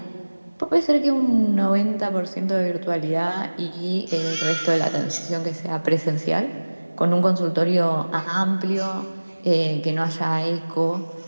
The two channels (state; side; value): inverted; both; correlation -1.00